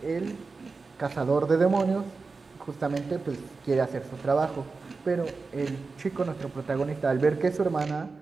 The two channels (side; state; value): left; quieter; 4.2 dB